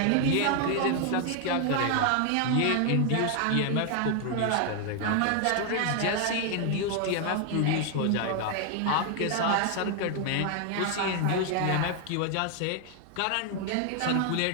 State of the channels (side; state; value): both; different; correlation 0.00